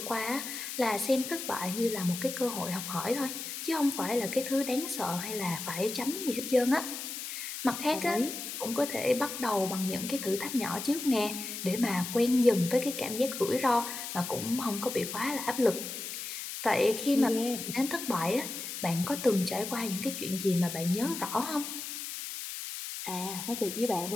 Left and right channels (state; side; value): noise; left; hiss, 7 dB below the sound